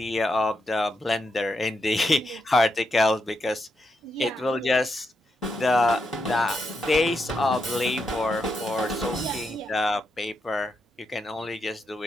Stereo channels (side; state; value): both; normal; correlation 0.83